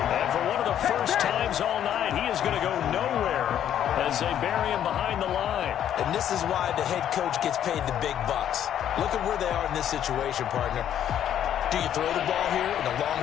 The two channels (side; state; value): right; quieter; 10.3 dB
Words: for one of the first times all night, he is going to go nowhere as they bury him behind the line. And this is why the head coach gets paid the big bucks. Look at where they are in this situation, partner. Do you throw the ball here in a